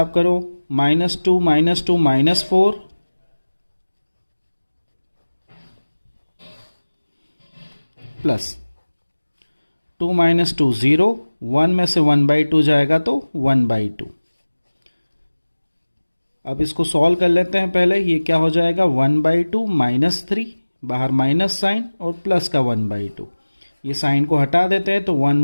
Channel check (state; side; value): inverted; both; correlation -1.00